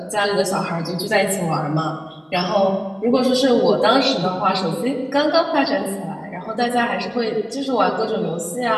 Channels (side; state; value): both; identical; correlation 1.00